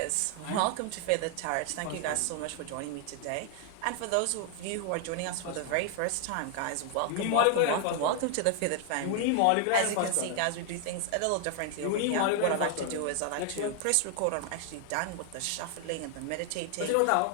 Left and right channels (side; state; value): both; different; correlation 0.00